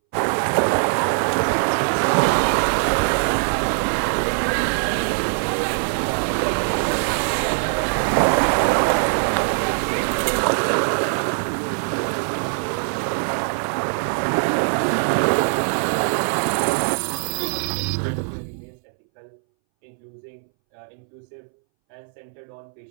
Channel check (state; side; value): silent; left; 63 dB below the other